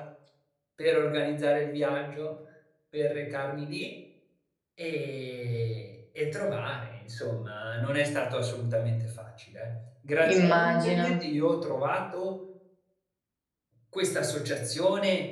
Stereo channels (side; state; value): both; identical; correlation 1.00